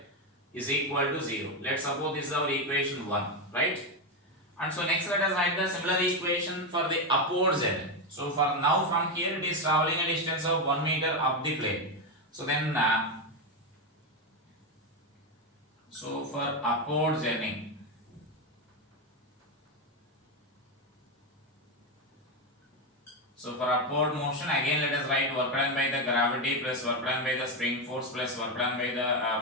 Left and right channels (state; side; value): normal; both; correlation 0.09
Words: is equal to 0. Let's suppose this is our equation 1, right? And so next let us write the similar equation for the upward z. So for now from here it is traveling a distance of 1 meter up the plane. So then so for upward journey, so for upward motion, again let us write work done by the gravity plus work done by the spring force plus work done by